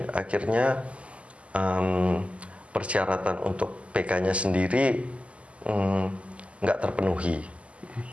akhirnya persyaratan untuk PK-nya sendiri nggak terpenuhi.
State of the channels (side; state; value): left; late; 0.060 ms